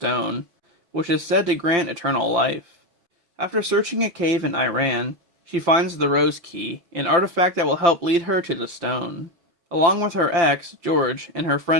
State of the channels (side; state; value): left; late; 5.8 ms